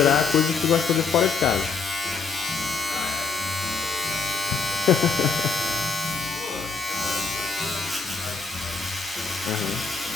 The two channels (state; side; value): quieter; right; 4.9 dB